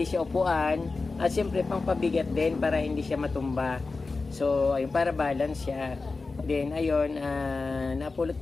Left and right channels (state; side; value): quieter; right; 3.9 dB